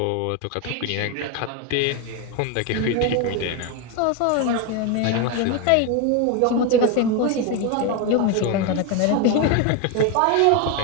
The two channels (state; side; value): different; both; correlation 0.02